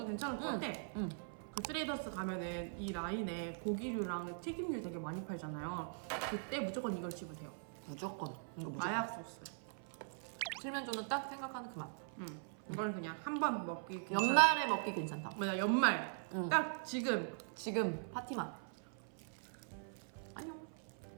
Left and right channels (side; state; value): left; silent; 50 dB below the other